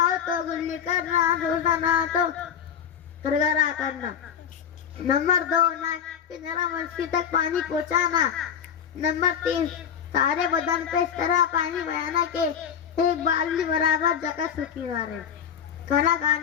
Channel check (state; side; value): quieter; right; 8.2 dB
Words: ہو تو گلی کرنا, روزہ نہ تو گرگرا کرنا. نمبر 2 نرم منشی تک پانی پہنچانا. نمبر 3 سارے بدن پہ اس طرح پانی بہانا کہ ایک بالٹی برابر جگہ سوکھی نہ رہے. کھانا